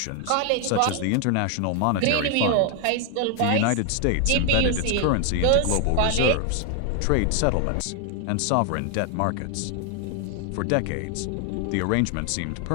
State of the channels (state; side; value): different; both; correlation 0.01